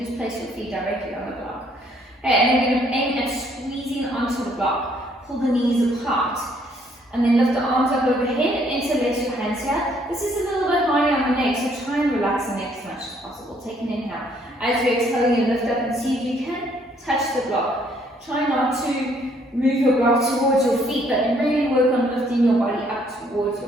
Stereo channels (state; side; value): normal; both; correlation 0.66